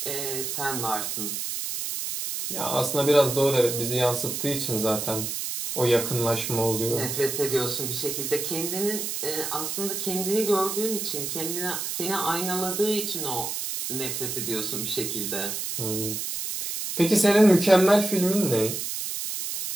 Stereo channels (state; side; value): noise; right; hiss, 4 dB below the sound